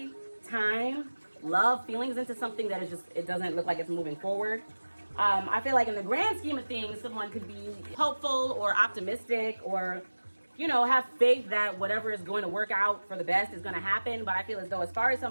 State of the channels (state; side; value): inverted; both; correlation -1.00